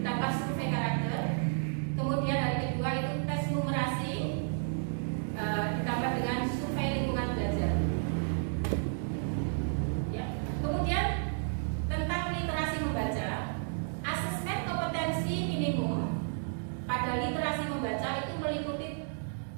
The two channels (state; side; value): silent; left; digital silence